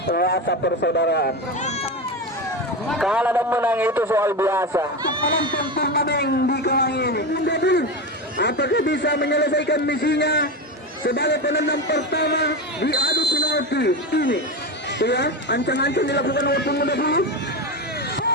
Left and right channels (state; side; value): normal; both; correlation 0.19